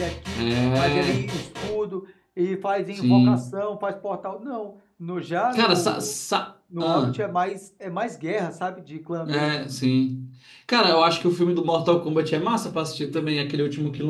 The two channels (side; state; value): both; identical; correlation 1.00